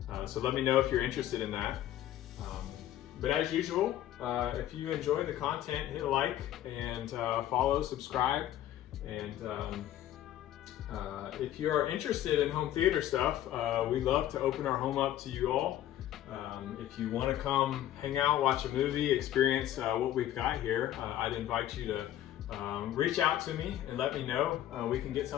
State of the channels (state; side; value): quieter; right; 12.5 dB